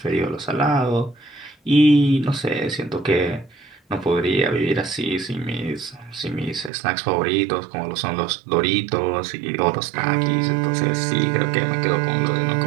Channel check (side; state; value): left; drops out; at 6.7 s